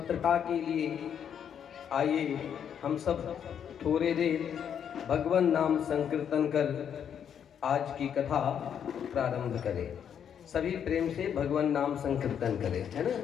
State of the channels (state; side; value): quieter; right; 8.4 dB